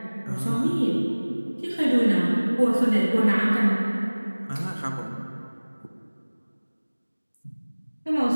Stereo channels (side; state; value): both; inverted; correlation -1.00